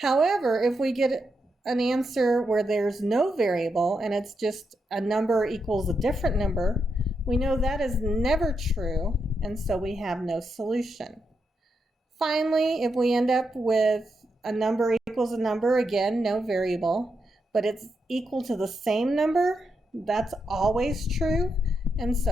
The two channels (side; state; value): both; normal; correlation 0.83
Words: if we get an answer where there's no variable and it's just a number equals a different number, we know that is never true, and so we have no solution. Finally, if we end up with a number equals a number, again, no variable, but it's equal to the same number, that's always true, and